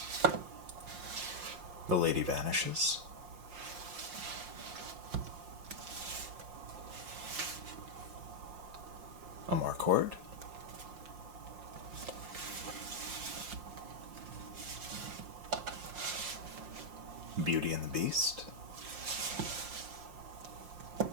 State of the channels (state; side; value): late; left; 5.6 ms